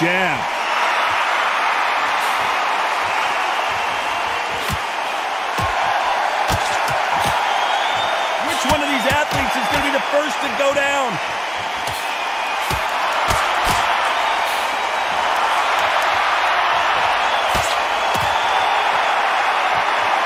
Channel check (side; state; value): both; identical; correlation 1.00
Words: Which one of these athletes is going to be the first to go down?